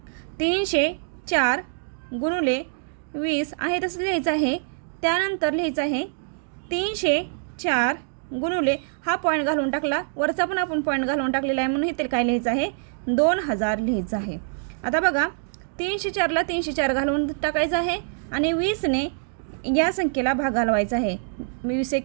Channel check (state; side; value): silent; left; digital silence